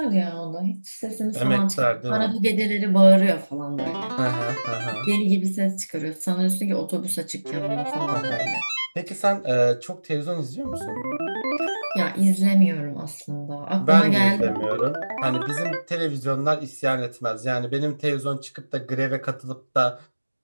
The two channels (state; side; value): inverted; both; correlation -1.00